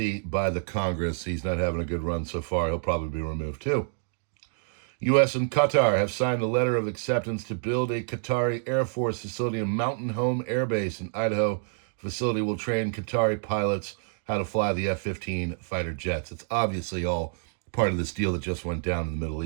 by the Congress. He's not having a good run so far. He'll probably be removed too. U.S. and Qatar have signed a letter of acceptance to build a Qatari Air Force facility in Mountain Home Air Base in Idaho. Facility will train Qatari pilots how to fly the F-15 fighter jets. It's obviously all part of this deal that just went down in the Middle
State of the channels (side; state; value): left; silent; digital silence